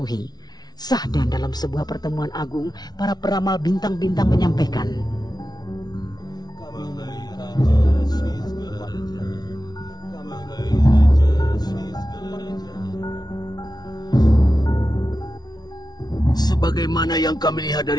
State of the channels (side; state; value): right; late; 0.19 ms